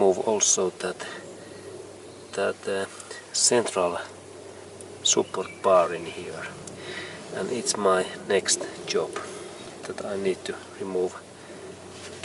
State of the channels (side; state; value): both; identical; correlation 1.00